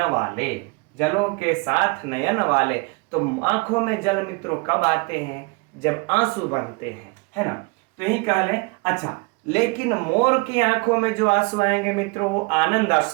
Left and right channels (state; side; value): quieter; left; 29.0 dB